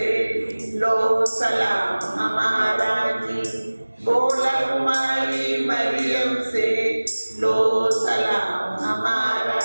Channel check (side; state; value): both; inverted; correlation -1.00